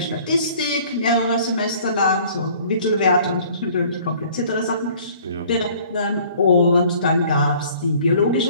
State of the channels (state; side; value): inverted; both; correlation -0.54